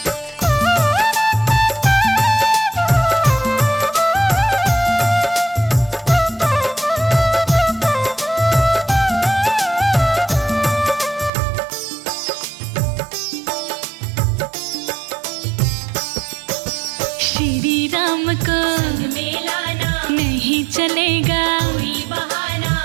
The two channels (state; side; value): drops out; left; at 11.3 s